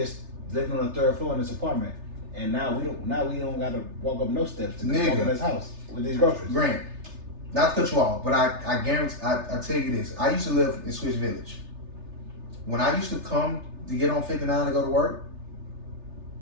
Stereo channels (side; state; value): left; late; 3.3 ms